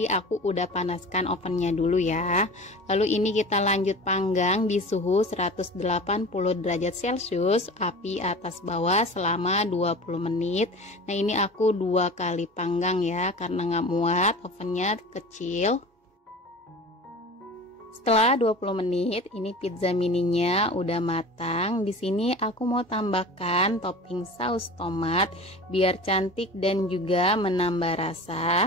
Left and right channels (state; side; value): normal; both; correlation 0.37